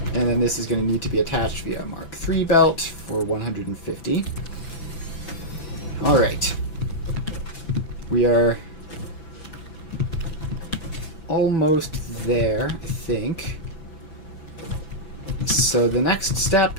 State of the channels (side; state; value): right; late; 6.0 ms